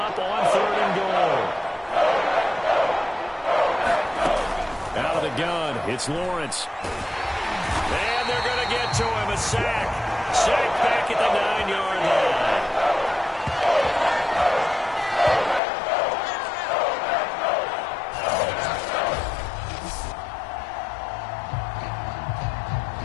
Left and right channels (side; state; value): right; drops out; at 15.6 s